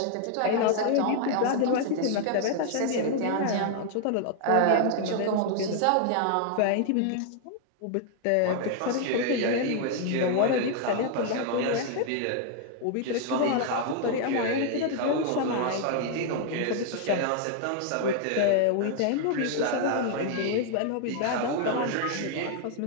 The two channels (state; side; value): different; both; correlation 0.00